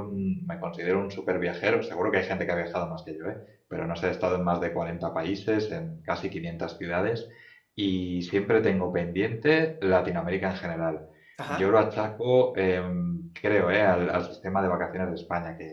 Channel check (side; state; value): both; identical; correlation 1.00